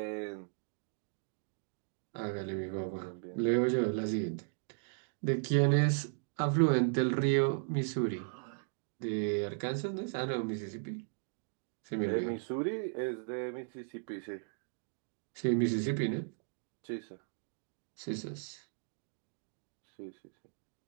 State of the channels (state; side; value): silent; left; digital silence